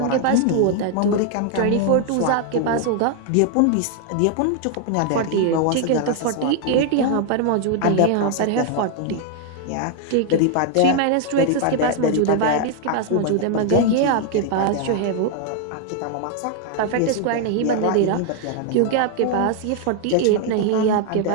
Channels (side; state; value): both; different; correlation 0.00